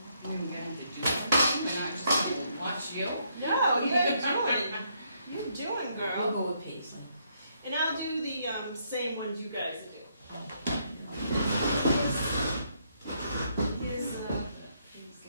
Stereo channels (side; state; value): both; inverted; correlation -0.73